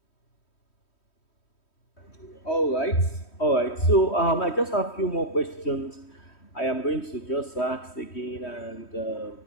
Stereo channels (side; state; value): right; late; 3.1 ms